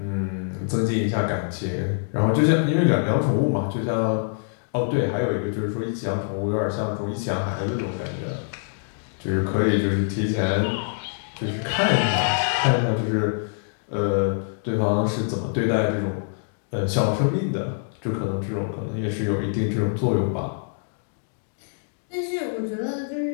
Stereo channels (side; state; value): right; silent; digital silence